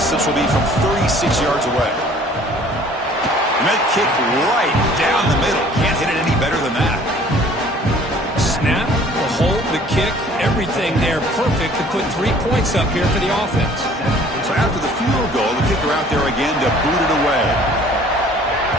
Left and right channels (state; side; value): normal; both; correlation 0.53